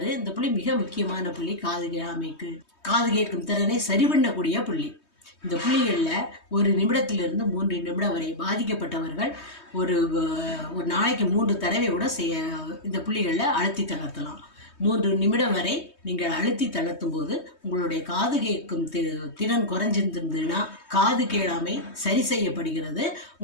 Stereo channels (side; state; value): right; late; 3.2 ms